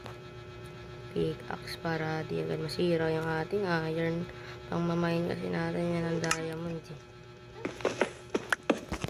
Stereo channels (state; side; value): identical; both; correlation 1.00